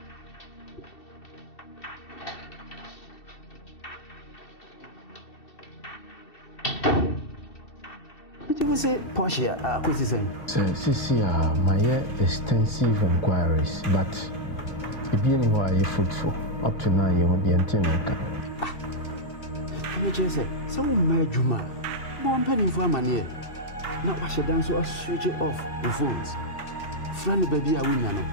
You say Porsche, acquisition. I'm just say, so Juma, born penny for money. Now, wash it down so I switch it off the phones. Friend, baby, I win, you know.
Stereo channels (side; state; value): right; late; 2.7 ms